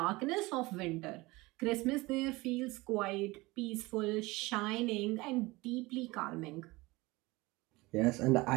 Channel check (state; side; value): quieter; left; 22.0 dB